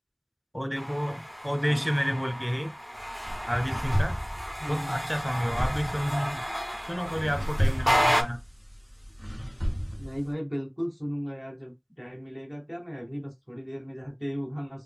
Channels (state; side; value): identical; both; correlation 1.00